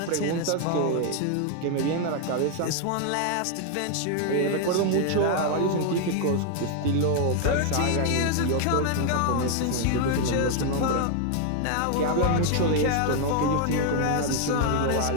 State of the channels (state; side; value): different; both; correlation 0.00